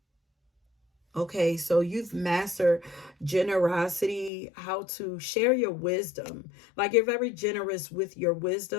Okay, so you've mastered generosity, how to share your wisdom. Like you're very generous with your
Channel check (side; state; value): right; drops out; at 4.3 s